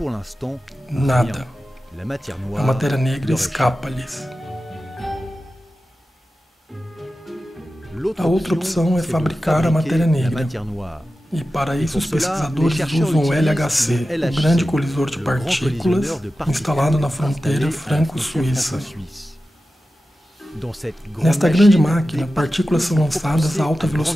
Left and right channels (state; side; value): normal; both; correlation 0.94